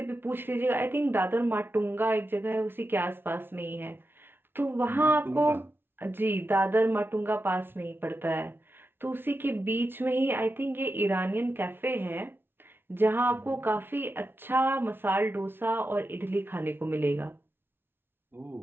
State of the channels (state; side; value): late; left; 0.11 ms